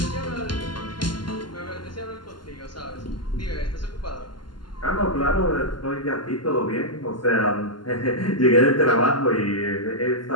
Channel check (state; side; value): late; right; 0.71 ms